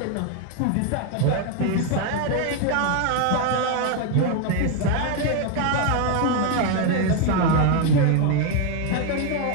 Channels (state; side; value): different; both; correlation 0.01